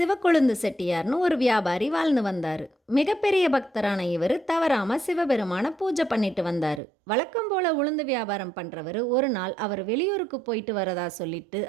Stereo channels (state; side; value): drops out; left; at 6.8 s